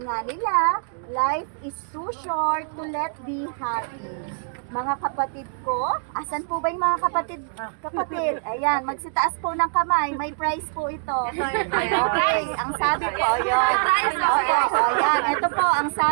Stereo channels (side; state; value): left; silent; digital silence